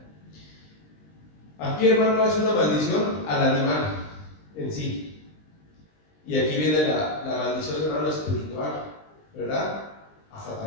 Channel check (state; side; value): late; right; 20 ms